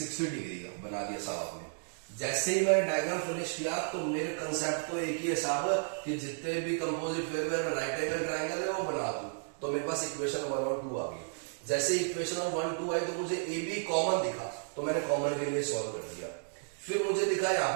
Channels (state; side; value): silent; left; digital silence